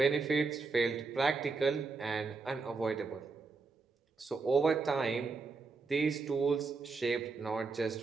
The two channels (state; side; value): quieter; left; 4.3 dB